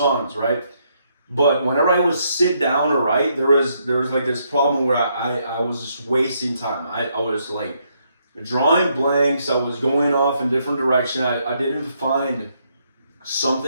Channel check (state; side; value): inverted; both; correlation -0.75